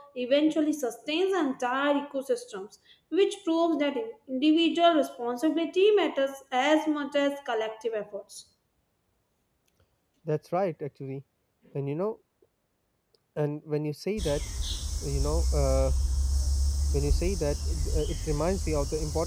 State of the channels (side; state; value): both; identical; correlation 1.00